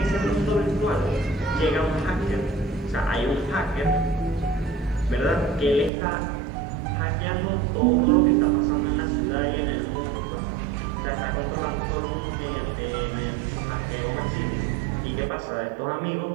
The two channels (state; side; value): drops out; left; at 5.9 s